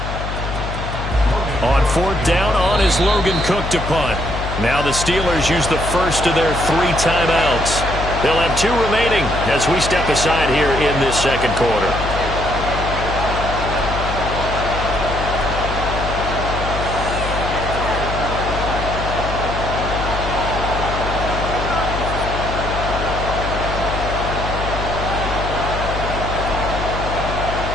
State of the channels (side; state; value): left; noise; hum, 5 dB below the sound